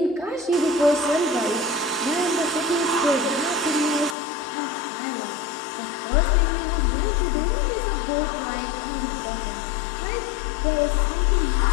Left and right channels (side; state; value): right; drops out; at 4.2 s